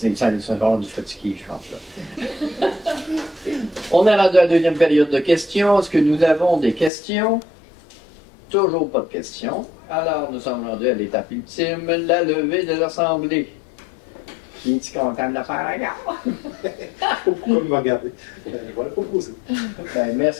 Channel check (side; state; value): right; drops out; at 6.9 s